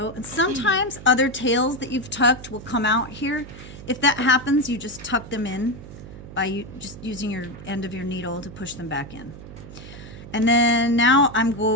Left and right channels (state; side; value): noise; right; hum, 15 dB below the sound